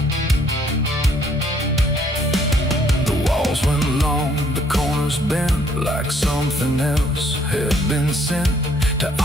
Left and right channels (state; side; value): normal; both; correlation 0.65